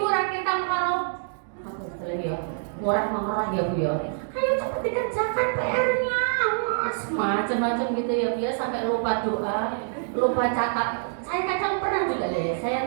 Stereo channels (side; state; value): left; silent; digital silence